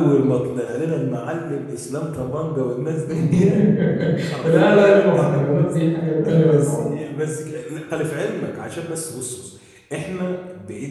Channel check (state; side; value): identical; both; correlation 1.00